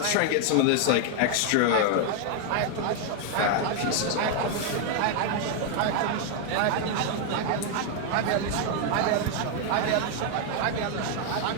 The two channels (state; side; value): different; both; correlation 0.00